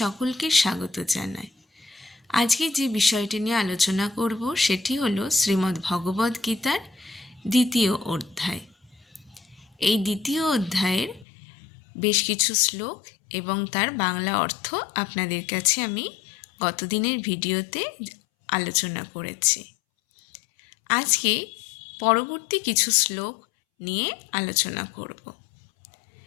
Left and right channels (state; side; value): drops out; right; at 11.2 s